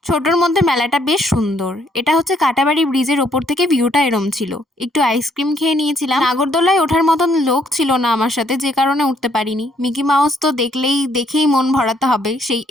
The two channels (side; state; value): both; normal; correlation 0.69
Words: ছোটোর মধ্যে মেলাটা বেশ সুন্দর। এটা হচ্ছে কাটাবাড়ি ব্রিজের ওপর থেকে ভিউটা এরম ছিল। একটু আইসক্রিম খেয়ে নিয়েছিলাম। নাগরদোলায় ওঠার মতন লোক ছিল না আমার সাথে, যে কারণে উঠতে পারিনি। মিকি মাউস তো দেখেই মন ভরাতে হবে, সেই